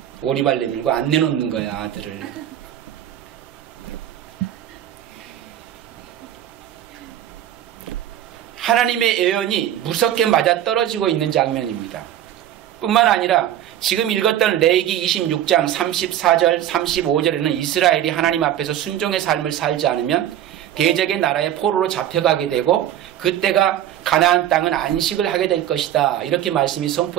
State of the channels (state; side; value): quieter; left; 11.5 dB